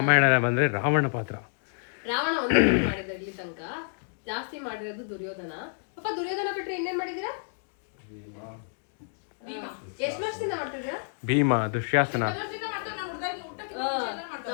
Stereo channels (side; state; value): right; silent; digital silence